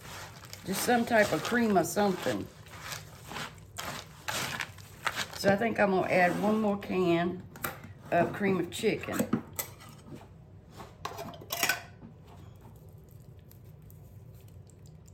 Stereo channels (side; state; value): both; identical; correlation 1.00